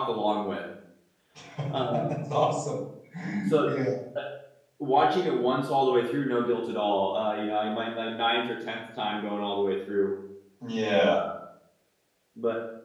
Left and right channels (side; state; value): both; identical; correlation 1.00